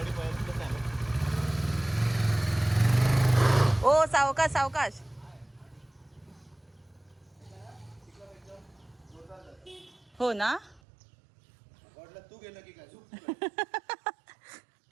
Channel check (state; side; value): drops out; left; at 10.8 s